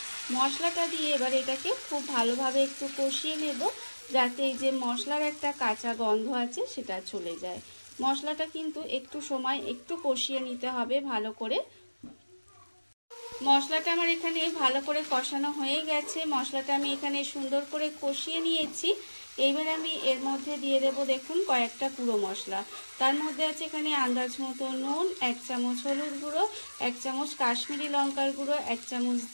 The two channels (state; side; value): inverted; both; correlation -1.00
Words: মশলাটা দিয়ে এবার এটাকে খুব ভালোভাবে একটু কষিয়ে নেব, যাতে এই যে মশলার একটা কাঁচা গন্ধ আছে সেটা চলে যায়। মশলাটা কিন্তু একটু সময় একটু কষিয়ে নিতে হবে ভালো করে। মশলাটা আমার এখানে ভালো করে কষানো হয়ে গেছে। মশলাটা আমি এখানে সুন্দর করে কষিয়ে নিয়েছি। এইবার আমি এর মধ্যে দিয়ে দেব দেখুন কয়েকটা গুঁড়ো মশলা। তার মধ্যে আছে এখানে আন্দাজ মতো নুন, 1 চামচ হলুদ গুঁড়ো, 1 চামচ কাশ্মীরি লঙ্কার গুঁড়ো, 1 চামচ